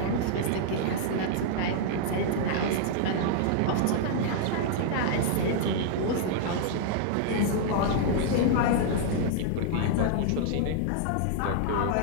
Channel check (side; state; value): both; different; correlation -0.01